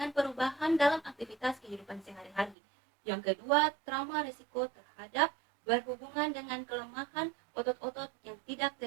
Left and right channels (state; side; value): drops out; left; at 2.6 s